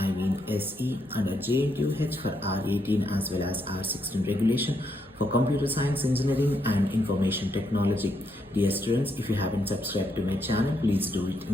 SE under Jntuh for R18 as well as R16 regulation for Computer Science Engineering and Information Technology. Dear students, if you haven't subscribed to my channel, please do it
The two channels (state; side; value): normal; both; correlation 0.78